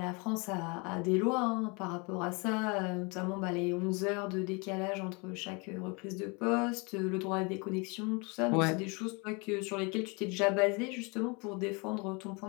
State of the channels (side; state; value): right; quieter; 30.5 dB